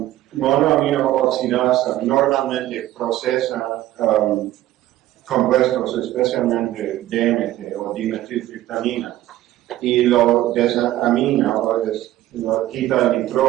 Monoaminooxidasa normalmente procesa compuestos, especialmente DMT o dimetiltriptamina, y lo desamina o lo quita el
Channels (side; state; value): left; quieter; 14.7 dB